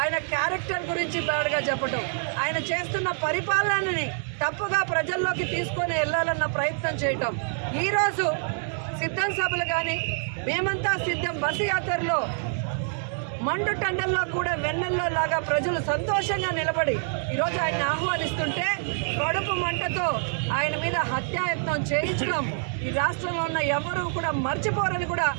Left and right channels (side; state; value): left; silent; 61 dB below the other